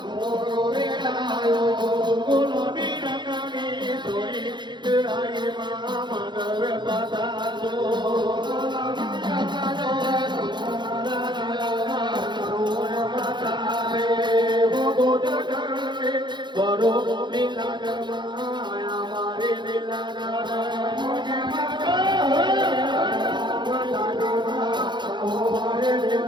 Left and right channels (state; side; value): late; left; 0.22 ms